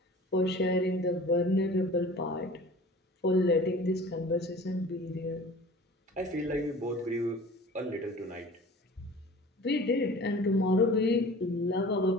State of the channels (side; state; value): both; normal; correlation 0.43